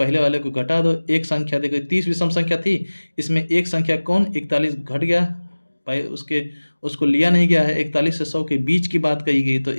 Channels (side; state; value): both; inverted; correlation -1.00